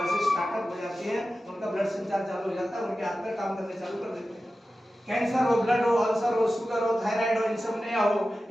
से स्टार्टअप हो जाती है, उनका ब्लड संचार चालू हो जाता है, उनके हाथ पैर काम करने चालू कर देते हैं। कैंसर हो, ब्लड हो, अल्सर हो, शुगर हो, थायराइड हो, इंसोम्निया हो,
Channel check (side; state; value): both; normal; correlation 0.94